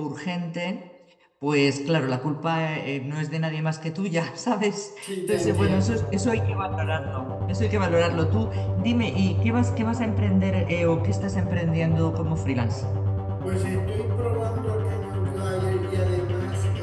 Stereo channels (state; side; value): identical; both; correlation 1.00